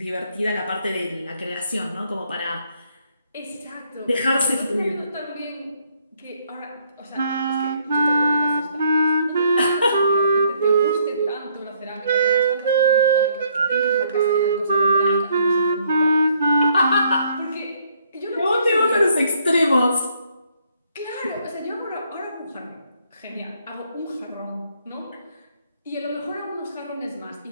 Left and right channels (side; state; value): both; inverted; correlation -0.68